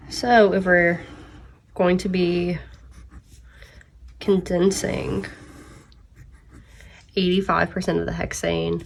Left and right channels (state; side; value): identical; both; correlation 1.00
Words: So if we're going to be condensing 85% of the hexane,